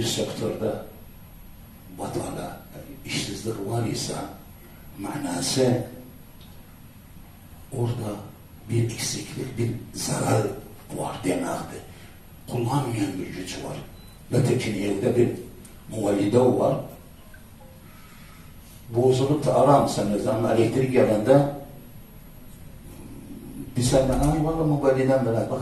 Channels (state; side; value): identical; both; correlation 1.00